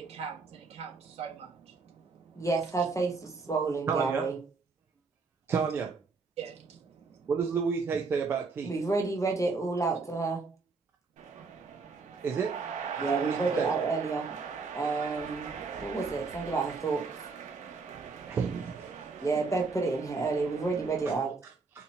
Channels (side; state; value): left; quieter; 4.3 dB